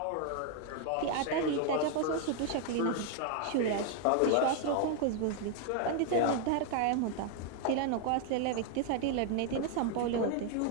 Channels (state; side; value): different; both; correlation 0.00